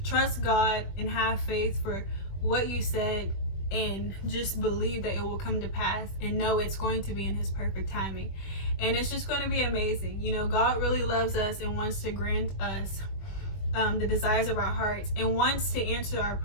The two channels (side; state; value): right; late; 21 ms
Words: trust God and have faith for what you said, and just believe that it will come to pass, and know it's going to be in his perfect timing. And it's just going to be amazing. You know, God really loves us and wants to grant us the desires of our hearts, and wants to answer our